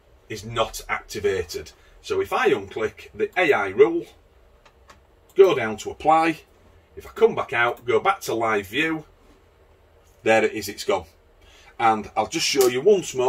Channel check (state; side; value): identical; both; correlation 1.00